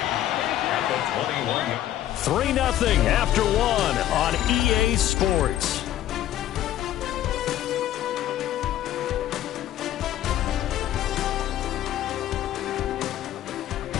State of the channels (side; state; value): right; quieter; 12.6 dB